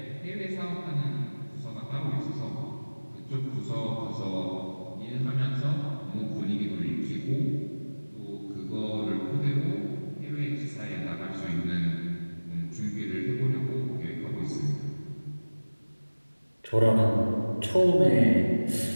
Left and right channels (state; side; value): inverted; both; correlation -1.00